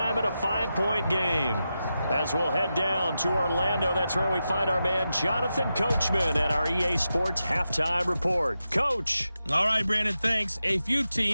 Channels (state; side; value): inverted; both; correlation -0.90